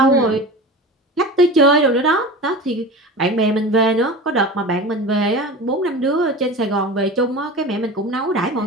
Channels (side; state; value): both; normal; correlation 0.32